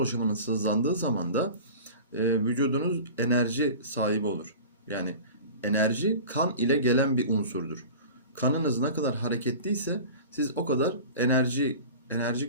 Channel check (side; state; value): both; inverted; correlation -0.37